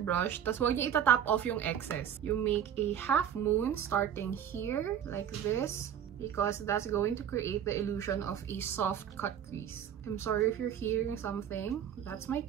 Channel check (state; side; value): quieter; left; 9.3 dB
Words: tas huwag niyo itatap off yung excess. You make a half moon starting here, like this, because that's going to create the illusion of a soft cut crease. I'm sorry if you're hearing something. That's my